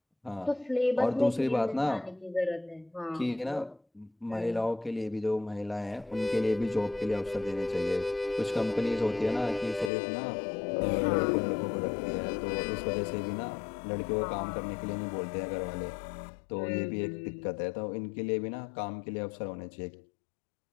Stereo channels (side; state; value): right; drops out; at 9.9 s